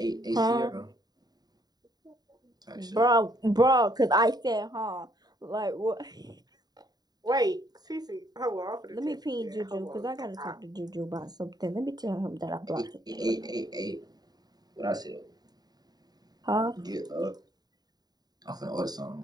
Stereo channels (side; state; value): left; late; 0.19 ms